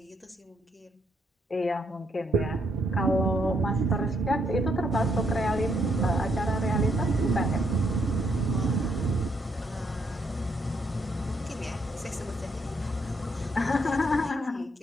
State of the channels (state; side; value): normal; both; correlation 0.73